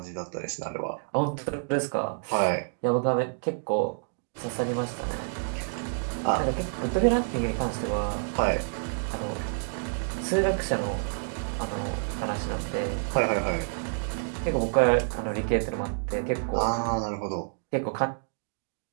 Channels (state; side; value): silent; left; digital silence